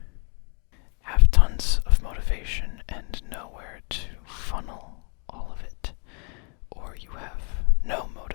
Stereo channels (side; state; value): right; quieter; 35.2 dB